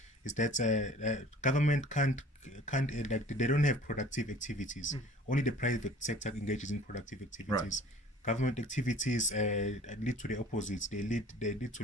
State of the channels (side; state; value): both; normal; correlation 0.49